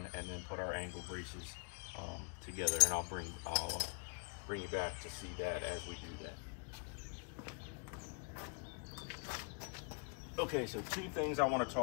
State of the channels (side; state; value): right; quieter; 36.4 dB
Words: and then put our angle braces together, and I'll bring you back to see that as we do that. Okay, so two things I want to